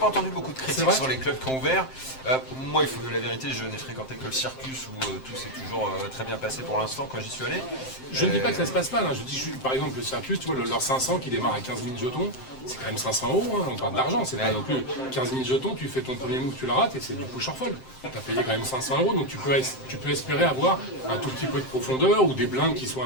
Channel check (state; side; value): late; right; 7.7 ms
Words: entendu beaucoup de C'est critiques vrai sur les clubs qui ont ouvert. Moi, il faut que la vérité, je n'ai fréquenté que le Circus où tout s'est toujours très bien passé pour l'instant quand j'y suis allé. Je ne dis pas que ça se passe mal, hein. Je dis par exemple le Circus, tu vois, leur 500 qui démarre à 15 000 jetons, c'est quand même 500 €, hein. On parle d'argent, c'est pas non plus 15 000 jetons, tu fais ton premier move, tu le rates et c'est du push or fold. Tu as payé quand même 500 €, donc tu peux espérer avoir un tout petit peu de profondeur ou des blindes qui soient